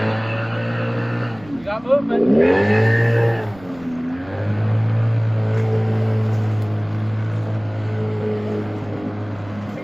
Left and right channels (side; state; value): right; noise; rumble, 22 dB below the sound